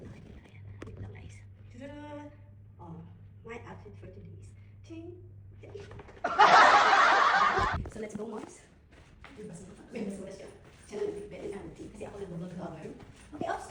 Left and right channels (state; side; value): identical; both; correlation 1.00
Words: Oh, my outfit for today is ting. So, let's go, Mars. May basura siya. Siya na nag-bed and everything. Kasi ako nag-vlog cover. Okay, ops.